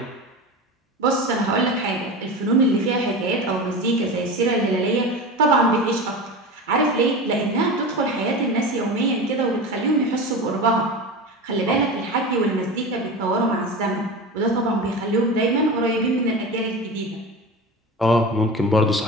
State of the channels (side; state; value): both; normal; correlation 0.28